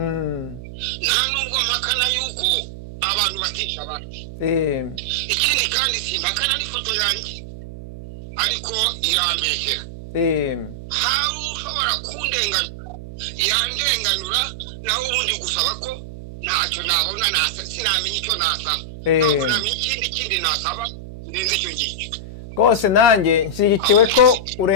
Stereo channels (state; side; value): noise; right; hum, 13 dB below the sound